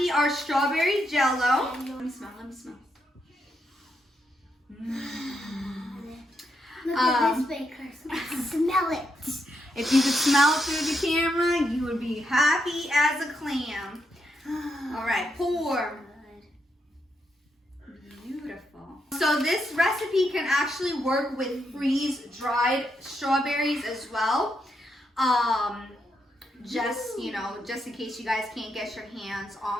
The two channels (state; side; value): normal; both; correlation 0.81